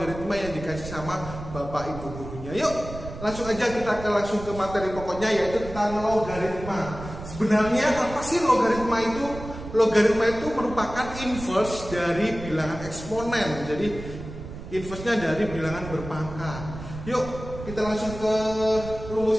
yang dikasih sama bapak ibu gurunya. Yuk langsung aja kita langsung ke materi pokoknya, yaitu tentang logaritma. Sebenarnya apa sih logaritma itu? Logaritma itu merupakan inverse dari bilangan eksponen. Jadi inverse-nya dari bilangan berpangkat. Yuk kita langsung ke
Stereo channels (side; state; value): right; noise; rumble, 11 dB below the sound